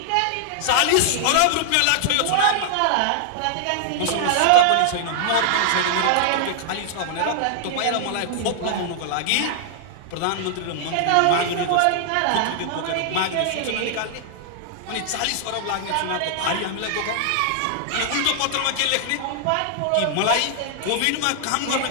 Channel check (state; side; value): different; both; correlation -0.01